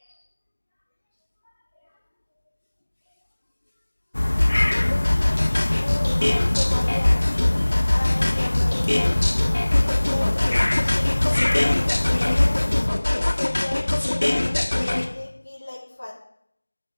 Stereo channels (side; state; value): both; inverted; correlation -1.00